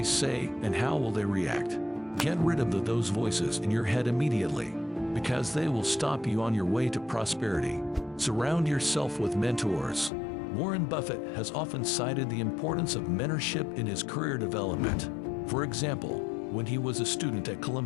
say and how will they react? Get rid of those voices in your head immediately, because they will stop you on your way to prosperity. Surround yourself with mentors. Warren Buffett has often cited the importance of mentorship in his career development. For example, when he was a student at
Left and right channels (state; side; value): drops out; right; at 10.1 s